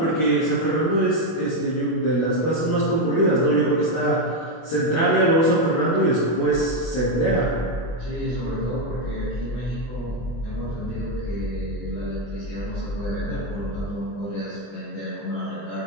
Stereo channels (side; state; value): right; late; 25 ms